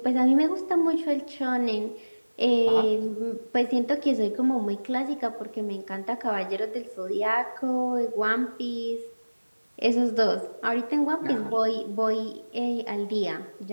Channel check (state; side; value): inverted; both; correlation -1.00